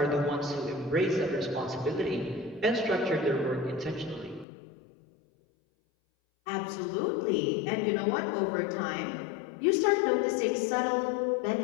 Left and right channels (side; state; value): right; drops out; at 4.5 s